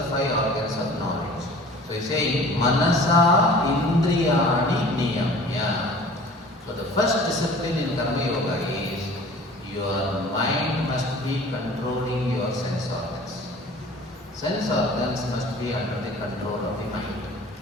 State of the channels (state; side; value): normal; both; correlation 0.45